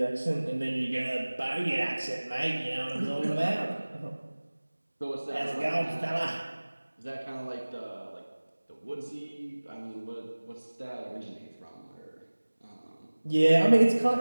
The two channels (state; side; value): inverted; both; correlation -1.00